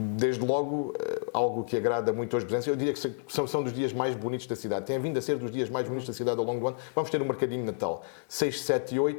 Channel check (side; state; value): right; silent; digital silence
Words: Desde logo, algo que agrada muito aos presentes. Eu diria que são dos dias mais bonitos da cidade. Tem vindo a ser dos dias mais bonitos da cidade ao longo do ano. Vamos ter um mercadinho de Natal. 6, 7 e